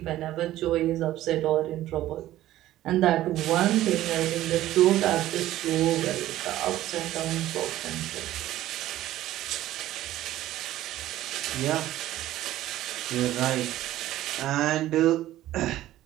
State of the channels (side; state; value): left; quieter; 14.4 dB